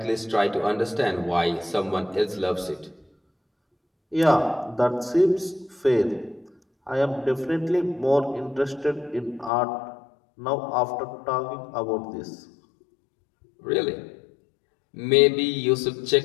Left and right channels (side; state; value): right; drops out; at 9.5 s